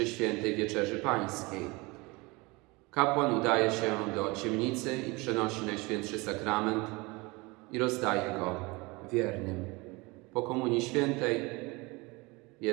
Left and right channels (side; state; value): left; quieter; 24.9 dB